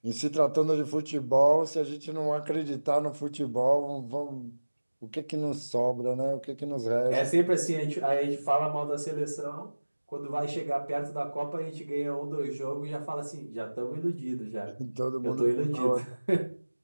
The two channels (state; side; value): inverted; both; correlation -1.00